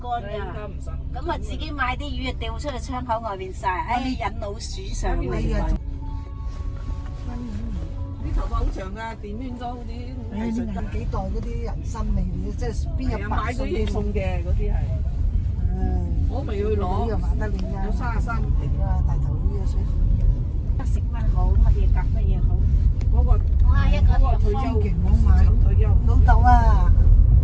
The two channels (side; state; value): both; identical; correlation 1.00